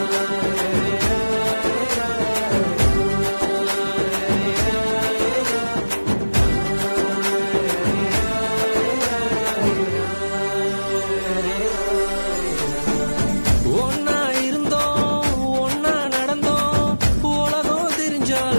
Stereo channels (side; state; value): both; inverted; correlation -1.00